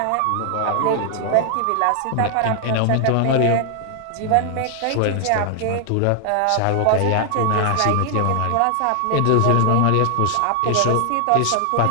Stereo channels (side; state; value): both; different; correlation 0.00